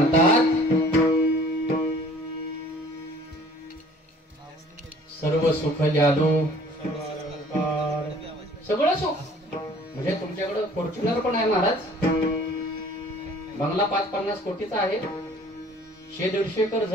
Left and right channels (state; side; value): normal; both; correlation 0.52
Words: सर्व सुख ल्यालो, सगळं सुख. म्हणजे तुमच्याकडे फॉर्च्युनर पण आहे महाराज, बंगला 5-50 कोटीचा आहे, 100-150 एकर